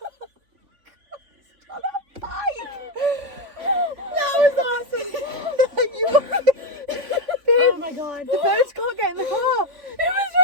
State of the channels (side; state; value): left; late; 3.5 ms